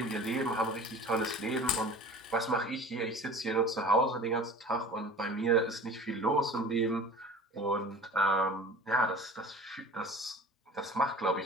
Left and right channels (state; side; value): normal; both; correlation 0.40